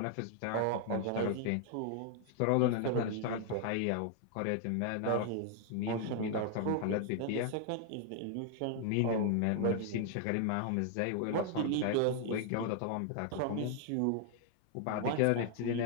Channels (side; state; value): both; different; correlation 0.00